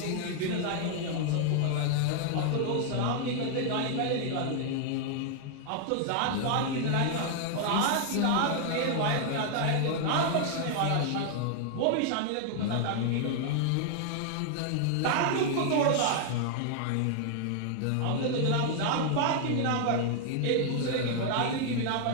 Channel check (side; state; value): both; different; correlation 0.00